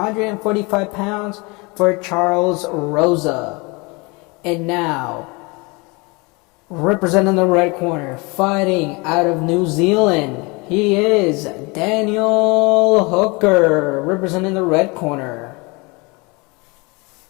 pounds for Charles Rosa. And now, representing the red corner, fighting out of New Zealand, he is Daniel Hooker, representing the red corner.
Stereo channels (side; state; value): right; quieter; 27.5 dB